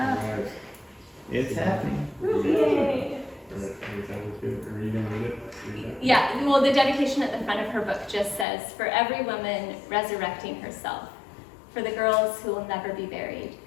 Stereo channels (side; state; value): right; drops out; at 8.5 s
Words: It's happening. Yay. Are you gonna read it? Yeah, well, the dedication at the front of her book just says, "For every woman resurrecting herself, for the girls who will never be buried,